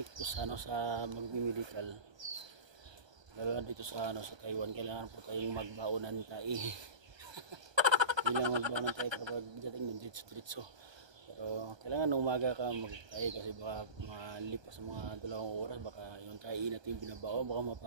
po sa magme-medical. Lalo na dito sa Taiwan, kailangan po tayong magbaonan tayo. Hindi lang magbaonan tayo kapag dating ng diretso. Pero kailangan umaga ka magtayo kasi baka malipas sa mga 2 oras, baka yung tayo natin binabao, baka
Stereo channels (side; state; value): left; late; 1.2 ms